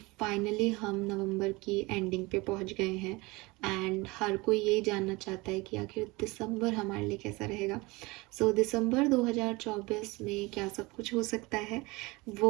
फाइनली हम नवंबर की एंडिंग पे पहुंच गए हैं एंड हर कोई यही जानना चाहता है कि आखिर दिसंबर हमारे लिए कैसा रहेगा। सो दिसंबर 2024 में क्या सब कुछ हो सकता है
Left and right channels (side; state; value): left; quieter; 23.6 dB